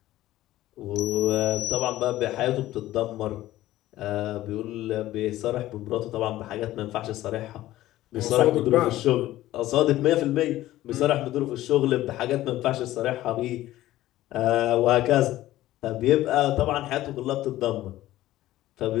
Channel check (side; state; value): right; quieter; 15.2 dB